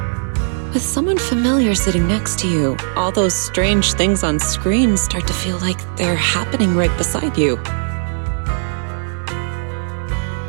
With someone familiar sitting next to you, all those strange things on screen start to feel like they're happening right beside you.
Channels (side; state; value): left; silent; digital silence